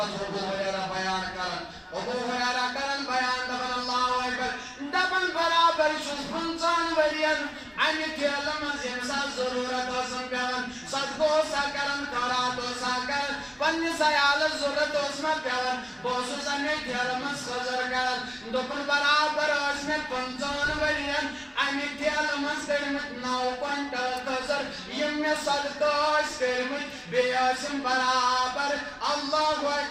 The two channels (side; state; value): both; identical; correlation 1.00